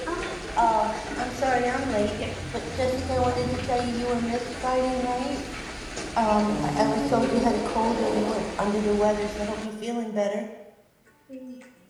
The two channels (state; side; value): identical; both; correlation 1.00